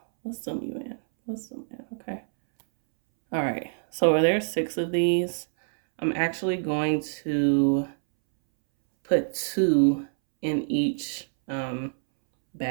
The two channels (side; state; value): left; silent; 61 dB below the other